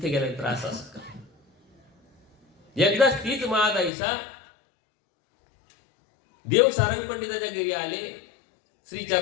गेल्यानंतर असं का. एकदाच तीच महादाईसा देव सारंग पंडिताच्या घरी आले.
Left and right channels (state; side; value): drops out; right; at 3.9 s